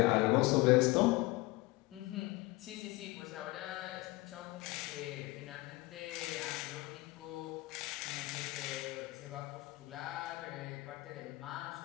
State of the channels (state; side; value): quieter; right; 21.4 dB